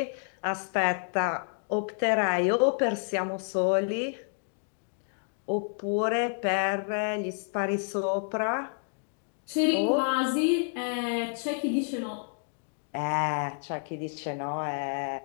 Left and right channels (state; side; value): silent; right; 58 dB below the other